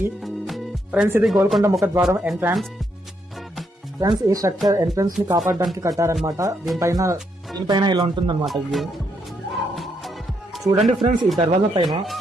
ఫ్రెండ్స్, ఇది గోల్కొండ ముఖద్వారం ఎంట్రన్స్. ఫ్రెండ్స్, ఈ స్ట్రక్చర్ ఎంట్రన్స్ ని కాపాడడానికి కట్టారనమాట. దీనిపైన ఇలా ఉంటుంది అనమాట వ్యూ. చూడండి ఫ్రెండ్స్, ఈ దర్వాజా పైన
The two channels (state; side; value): normal; both; correlation 0.77